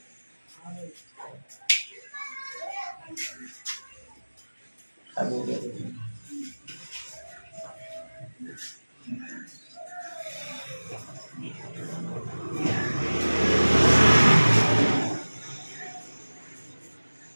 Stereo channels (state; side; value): inverted; both; correlation -1.00